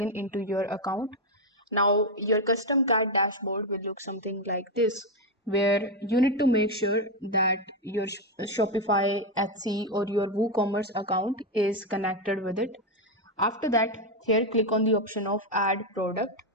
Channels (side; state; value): both; normal; correlation 0.06